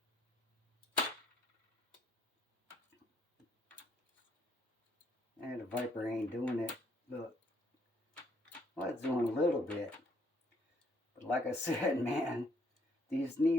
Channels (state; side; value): normal; both; correlation 0.68